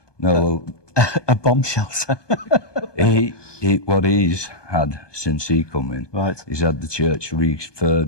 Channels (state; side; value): late; right; 1.2 ms